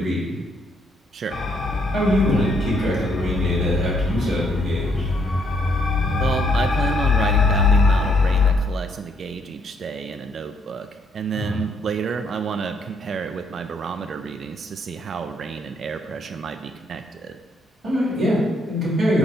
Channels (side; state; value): both; normal; correlation 0.70